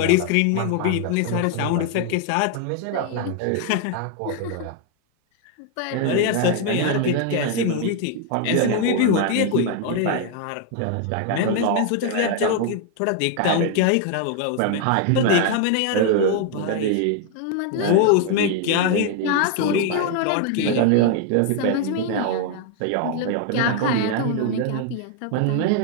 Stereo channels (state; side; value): different; both; correlation 0.00